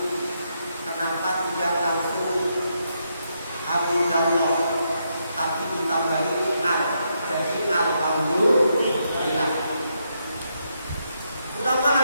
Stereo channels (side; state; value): both; inverted; correlation -0.80